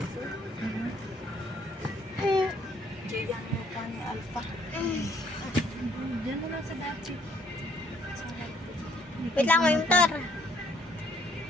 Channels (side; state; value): both; normal; correlation 0.65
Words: Diyan mo pa ni Alpha. Diyan mo lang sa dati. Wait lang, may motor.